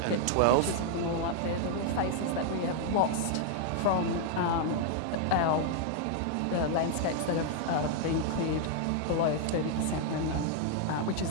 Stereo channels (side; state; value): both; different; correlation -0.01